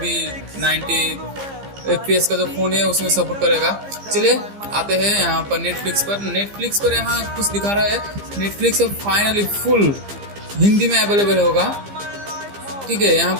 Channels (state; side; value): late; left; 15 ms